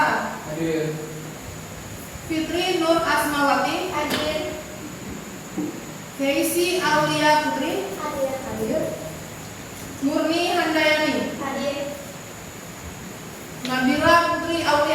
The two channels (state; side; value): identical; both; correlation 1.00